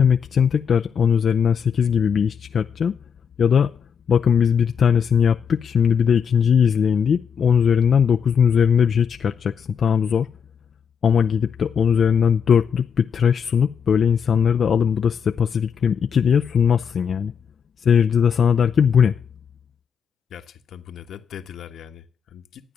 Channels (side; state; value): right; quieter; 7.1 dB